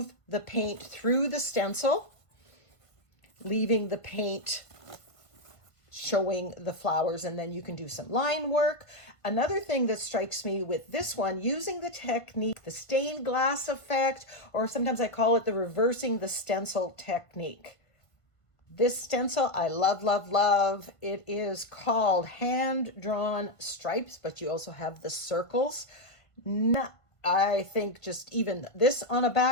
the paint through the stencil, leaving the paint showing the flowers, and then you can do some line work. Another thing that strikes me with this one, using the technique, the stained glass effect, or sometimes I call it the reversing the stencil technique. This stencil I love. It is called Hand-Drawn Stripes, but you also have the circles. I think just even this on a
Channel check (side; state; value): right; late; 1.5 ms